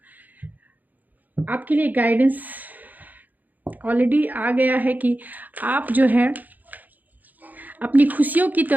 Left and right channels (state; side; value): late; left; 0.082 ms